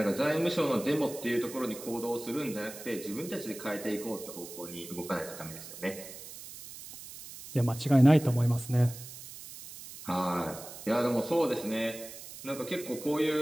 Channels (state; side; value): noise; right; hiss, 14 dB below the sound